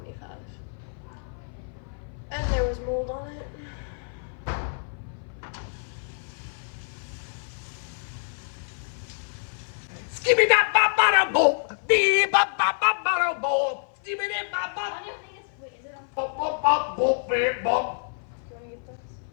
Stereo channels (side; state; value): right; silent; 56 dB below the other